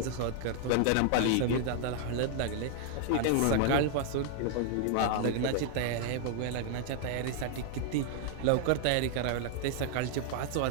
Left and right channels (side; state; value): both; different; correlation 0.00